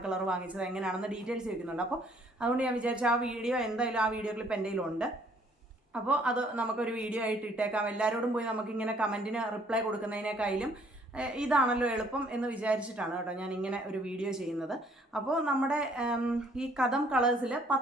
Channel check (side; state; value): both; normal; correlation 0.62